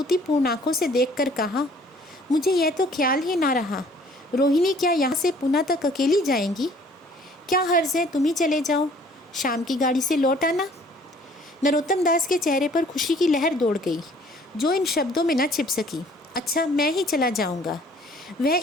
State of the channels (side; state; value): both; normal; correlation 0.56